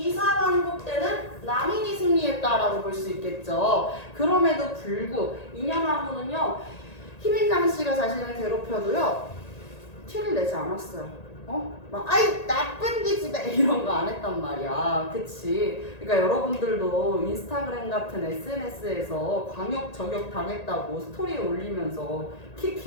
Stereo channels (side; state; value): right; late; 1.9 ms